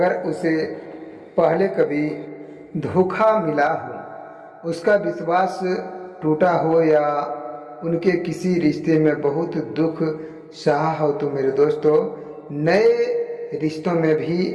उसे पहले कभी धोखा मिला हो, उसका विश्वास टूटा हो या उनके किसी रिश्ते में बहुत दुख सहा हो, तो मेरे दोस्तों नए रिश्तों में भी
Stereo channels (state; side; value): identical; both; correlation 1.00